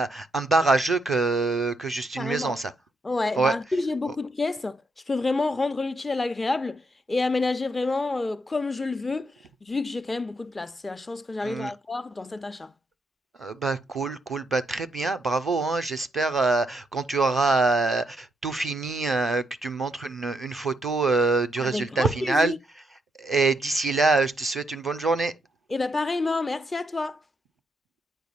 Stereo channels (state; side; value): normal; both; correlation 0.78